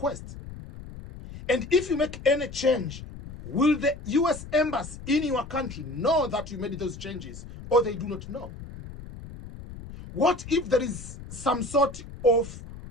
And if you make any change, will the US Embassy in your country know that you made those changes, or they do not know? What if there is some sort of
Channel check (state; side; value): noise; left; rumble, 13 dB below the sound